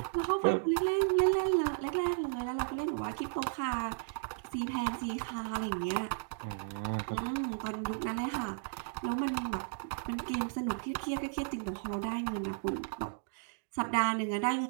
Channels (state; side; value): silent; left; digital silence